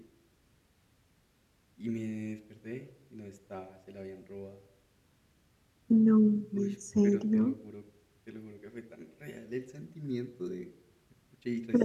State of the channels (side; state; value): both; identical; correlation 1.00